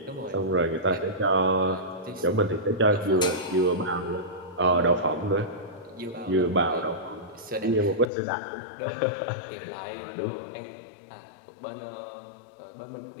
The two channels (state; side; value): drops out; right; at 8.1 s